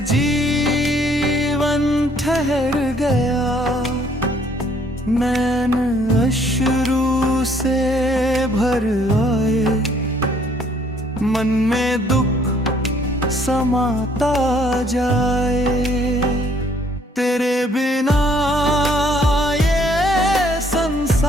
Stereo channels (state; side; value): normal; both; correlation 0.63